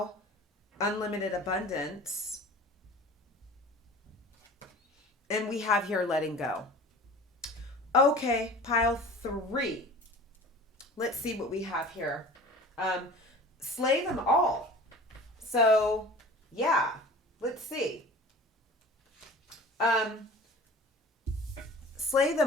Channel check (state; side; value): normal; both; correlation 0.41